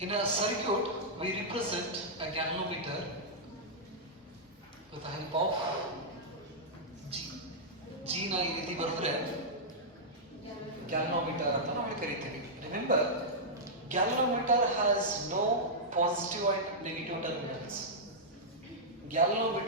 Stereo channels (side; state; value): both; normal; correlation -0.09